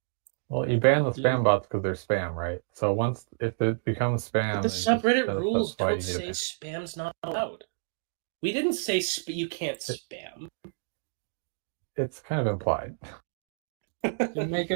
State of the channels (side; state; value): left; silent; digital silence